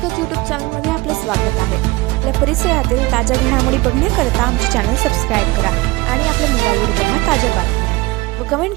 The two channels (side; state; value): left; quieter; 21.8 dB